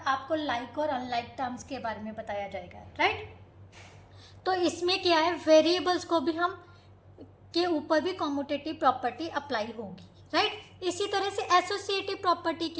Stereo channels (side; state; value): both; identical; correlation 1.00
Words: लाइक और अनलाइक टर्म्स के बारे में बताया जाएगा, राइट। तो इसमें क्या है, वेरिएबल्स को भी हम के ऊपर भी कॉम्यूटेटिव प्रॉपर्टी अप्लाई होगी, राइट। इसी तरह से एसोसिएटिव प्रॉपर्टी